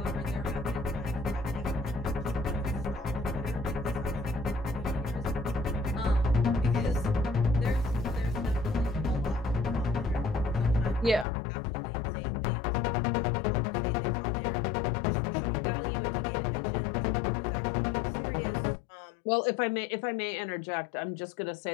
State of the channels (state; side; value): drops out; right; at 11.2 s